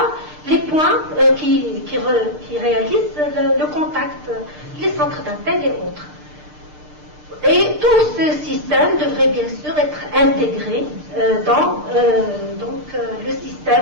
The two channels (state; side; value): late; left; 6.6 ms